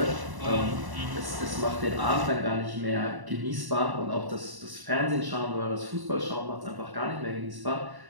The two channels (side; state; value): left; late; 1.1 ms